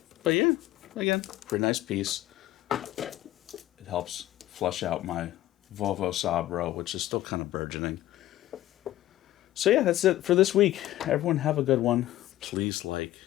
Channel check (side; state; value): right; quieter; 14.9 dB